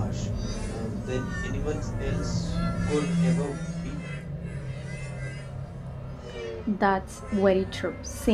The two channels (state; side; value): identical; both; correlation 1.00